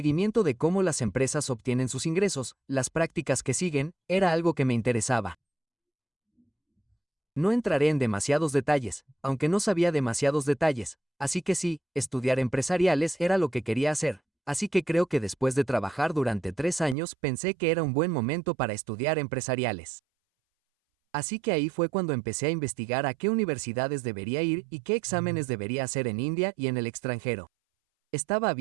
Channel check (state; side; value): drops out; left; at 16.9 s